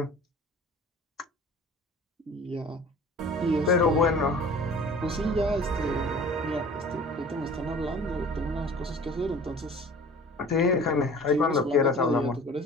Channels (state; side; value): normal; both; correlation 0.44